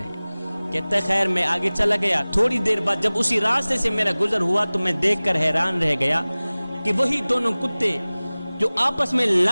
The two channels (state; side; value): inverted; both; correlation -0.99